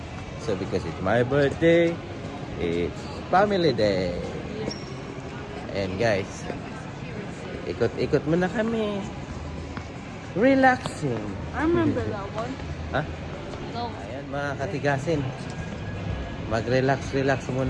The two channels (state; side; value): identical; both; correlation 1.00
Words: So because it's my birthday, it's family day. And guys, ikot-ikot muna kami. Relaxing. I remember that one. Ha? No. Ayan mga katigasin. Mag-relax